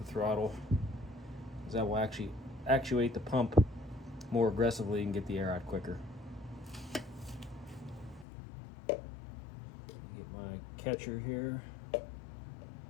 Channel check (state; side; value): drops out; right; at 8.2 s